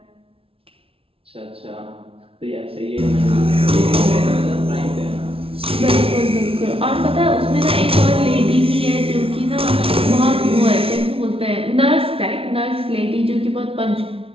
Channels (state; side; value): late; left; 0.27 ms